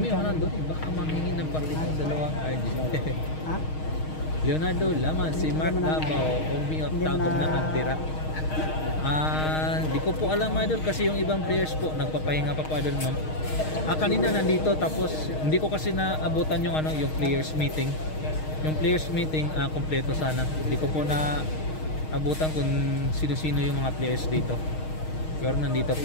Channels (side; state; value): right; late; 6.4 ms